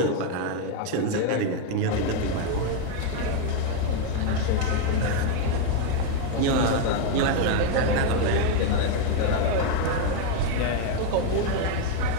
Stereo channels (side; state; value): both; different; correlation 0.01